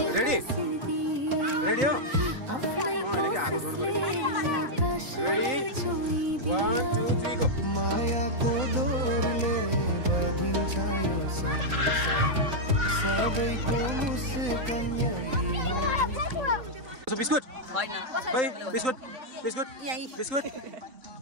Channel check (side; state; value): left; late; 4.0 ms